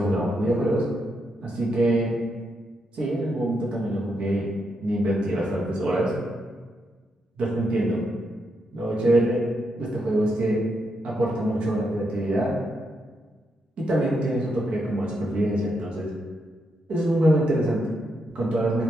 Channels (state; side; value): normal; both; correlation 0.81